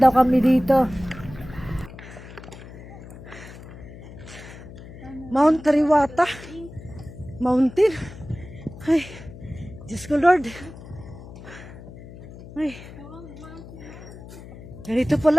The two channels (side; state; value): left; noise; hum, 15 dB below the sound